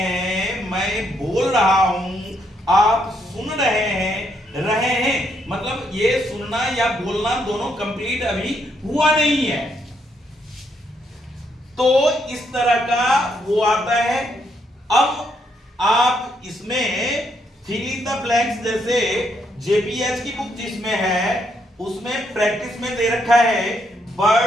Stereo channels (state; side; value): normal; both; correlation 0.75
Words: मैं बोल रहा हूं, आप सुन रहे हैं, मतलब ये सुनना या बोलना दोनों कंप्लीट अभी हुआ नहीं है। तो इस तरह का वो आता है। अब आप इसमें फिल इन द ब्लैंक्स, जैसे जेपीएच की बुक जिसमें है उसमें प्रैक्टिस में दे रखा है